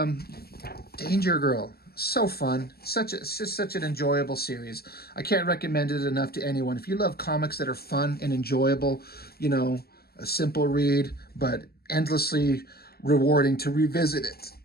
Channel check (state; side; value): late; right; 0.45 ms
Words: Danger Girl, so fun. It's just such an enjoyable series. I can't recommend it enough to anyone. If you love comics that are fun and enjoyable, you know, a simple read, but endlessly rewarding to revisit it